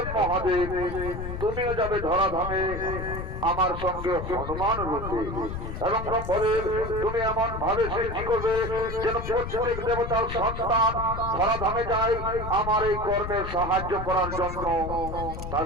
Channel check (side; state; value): left; noise; rumble, 7 dB below the sound